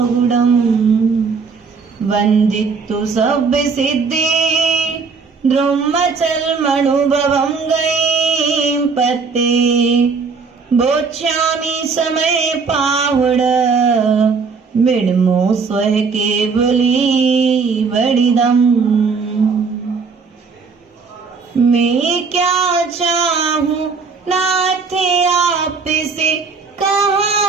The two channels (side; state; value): left; quieter; 5.0 dB